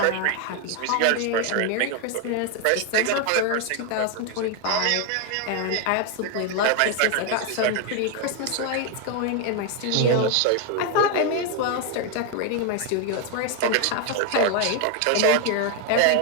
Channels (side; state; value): both; different; correlation 0.01